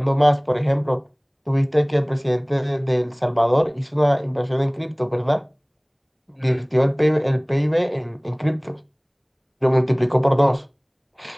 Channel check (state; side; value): identical; both; correlation 1.00